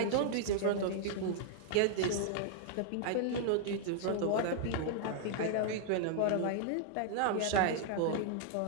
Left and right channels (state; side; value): different; both; correlation -0.01